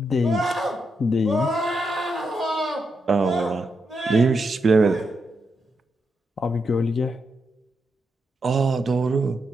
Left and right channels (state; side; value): normal; both; correlation 0.83